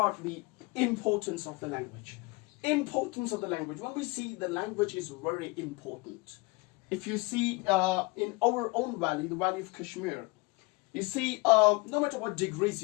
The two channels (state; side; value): quieter; right; 25.8 dB